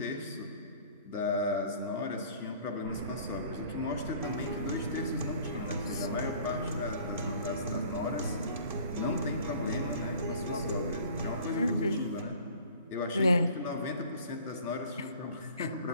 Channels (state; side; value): inverted; both; correlation -0.49